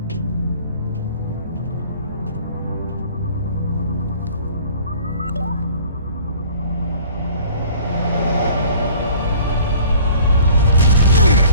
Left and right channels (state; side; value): inverted; both; correlation -0.50